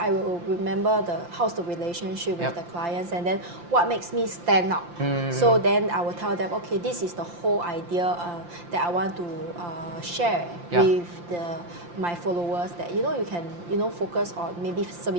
remember how's the relationship with the clients, and then what makes me stand out. So then I will tell them, okay, this is the whole idea that I want to share with my followers, that you can focus on maybe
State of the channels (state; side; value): late; left; 5.8 ms